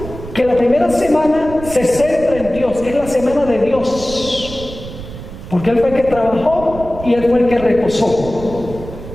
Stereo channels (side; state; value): right; noise; rumble, 12 dB below the sound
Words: que la primera semana se centra en Dios, es la semana de Dios, porque Él fue el que trabajó y Él fue el que reposó.